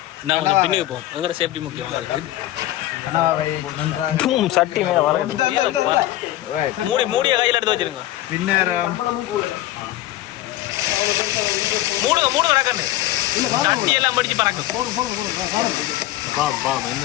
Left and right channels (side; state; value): right; quieter; 15.0 dB